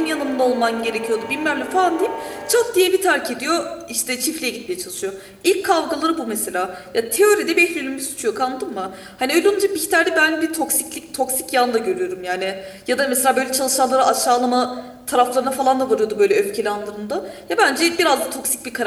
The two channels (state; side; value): identical; both; correlation 1.00